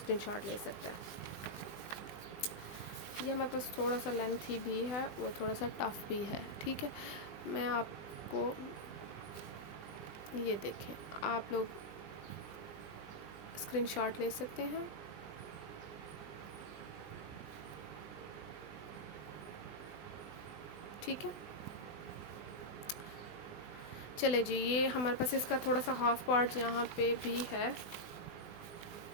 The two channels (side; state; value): right; late; 20 ms